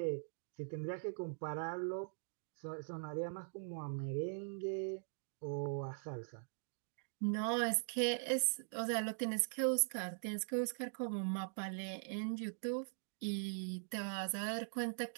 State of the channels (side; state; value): left; silent; digital silence